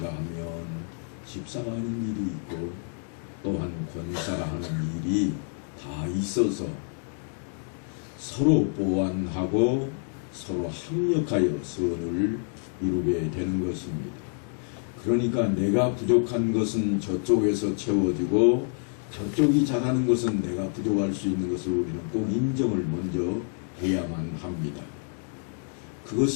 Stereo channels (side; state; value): right; silent; 56 dB below the other